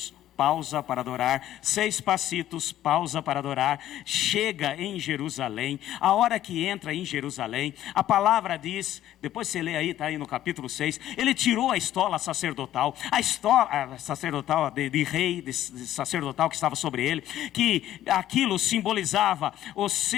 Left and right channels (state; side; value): quieter; right; 12.8 dB